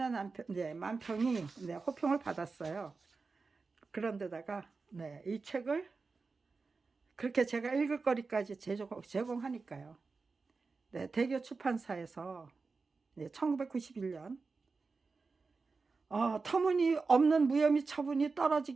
만평이 호평을 받았어요. 그런데다가 이 책을 그렇게 제가 읽을 거리까지 제공하니까요. 대교 출판사에서 1991년 터무니없는 무혐의 처분이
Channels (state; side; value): quieter; left; 4.3 dB